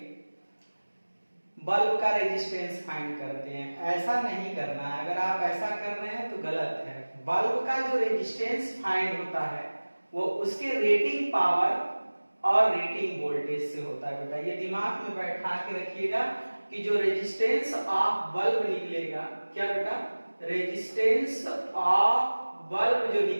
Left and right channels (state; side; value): inverted; both; correlation -1.00